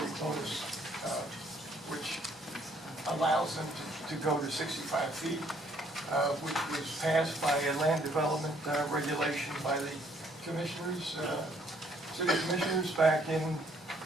bonus, which allows them to go to 65 feet, which was passed by a land development regulation by the commissioners, city commissioners back in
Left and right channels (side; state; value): both; normal; correlation 0.65